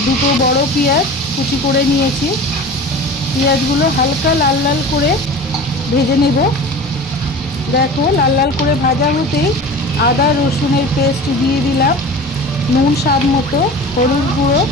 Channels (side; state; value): both; normal; correlation 0.36